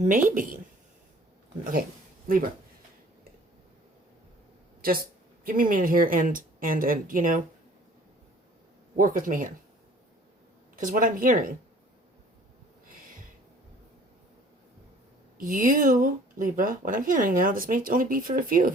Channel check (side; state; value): both; normal; correlation 0.52